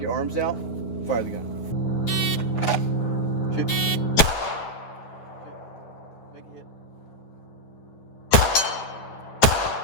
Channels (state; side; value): late; right; 9.7 ms